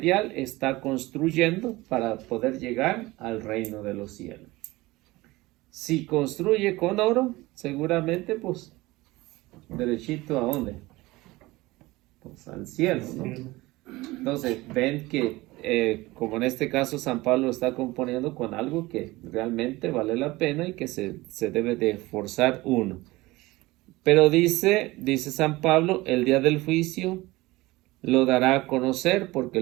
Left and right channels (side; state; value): left; quieter; 20.2 dB